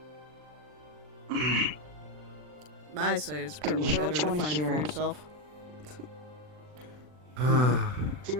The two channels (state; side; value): late; left; 40 ms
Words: I say it's probably hear better what to you wanna find it hear? for yourself.